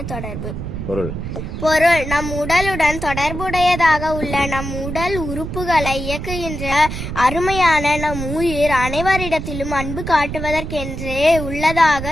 தொடர்பு. பொருள் நம் உடலுடன் தொடர்புடையதாக உள்ள நம் உடல் உறுப்புகளை இயக்குகின்ற அருமையான நம் உயிர் அனைவரிடத்திலும் அன்பு காட்டுவதற்கென்றே உள்ளதாக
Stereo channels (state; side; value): noise; right; rumble, 6 dB below the sound